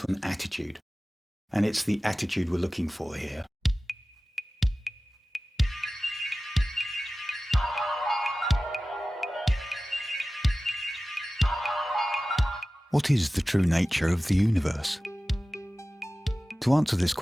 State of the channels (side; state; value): both; normal; correlation 0.96